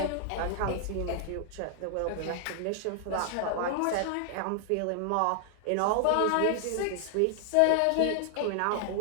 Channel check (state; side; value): different; both; correlation 0.00